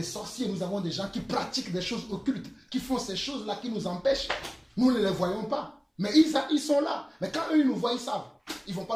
sorciers, nous avons des gens qui pratiquent des choses occultes, qui font ces choses-là qui nous empêchent. Nous ne les voyons pas. Mais ils sont là. Mais quand eux, ils nous voient, ils savent. Ils ne vont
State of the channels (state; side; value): identical; both; correlation 1.00